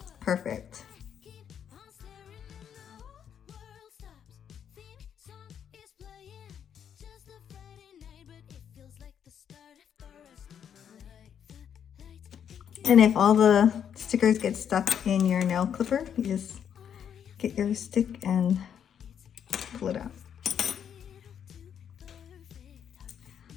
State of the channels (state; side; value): quieter; right; 8.5 dB